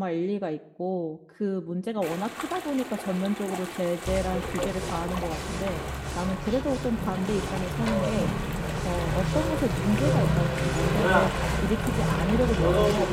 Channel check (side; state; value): both; identical; correlation 1.00